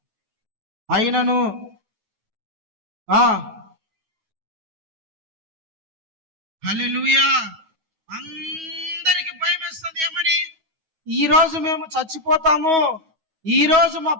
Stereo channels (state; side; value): late; left; 9.3 ms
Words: అయినను హల్లెలూయా, అందరికి భయం వేస్తుంది. ఏమని? ఈరోజు మేము చచ్చిపోతాము, ఈరోజు మా